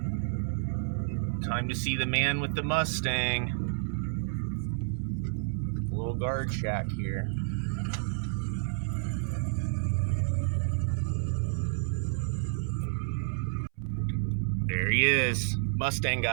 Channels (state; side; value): silent; left; 58 dB below the other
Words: Time to see the man with the Mustang. A little guard shack here. There he is, Mustang